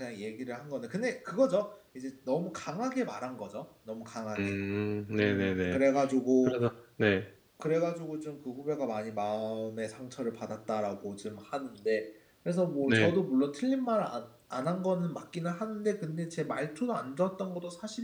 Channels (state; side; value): identical; both; correlation 1.00